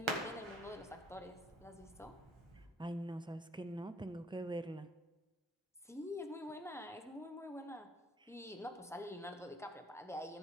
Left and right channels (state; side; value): normal; both; correlation 0.60